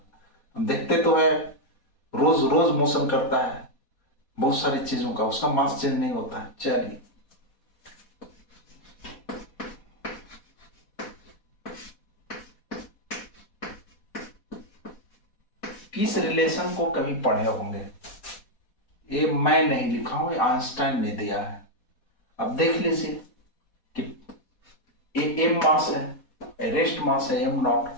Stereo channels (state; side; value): late; right; 4.1 ms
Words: हम देखते तो है रोज रोज मोशन करता है बहुत सारी चीजों का, उसका मास चेंज नहीं होता है। चलिए किस रिलेशन को कभी पढ़े होंगे, ये मैं नहीं लिखा हूं, ये आइंस्टाइन ने दिया है। अब देख लीजिए कि ये एम मास है, रेस्ट मास है m0।